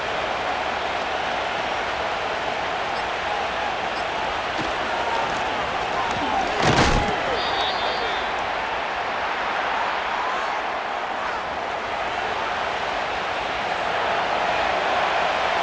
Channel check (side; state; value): both; identical; correlation 1.00